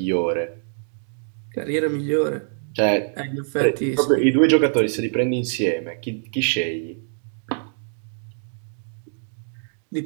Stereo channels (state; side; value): silent; left; digital silence